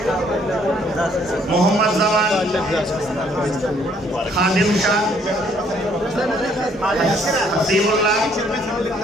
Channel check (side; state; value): both; normal; correlation 0.64